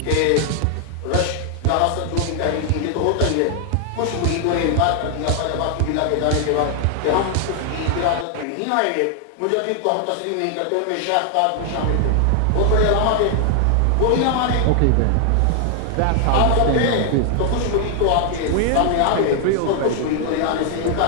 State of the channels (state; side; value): different; both; correlation 0.00